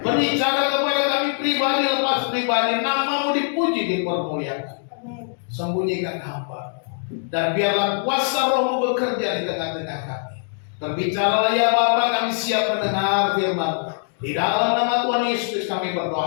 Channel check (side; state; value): right; silent; 64 dB below the other